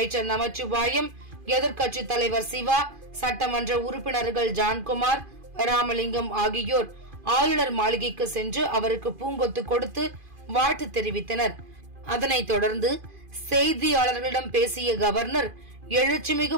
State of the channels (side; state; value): left; late; 2.5 ms